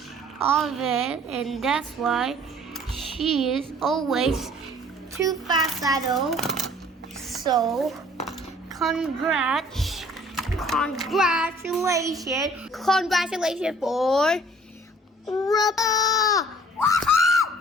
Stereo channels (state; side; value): normal; both; correlation 0.54